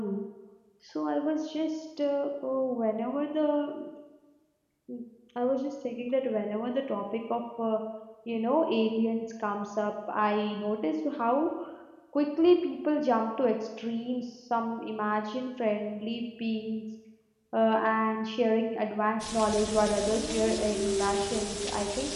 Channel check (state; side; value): identical; both; correlation 1.00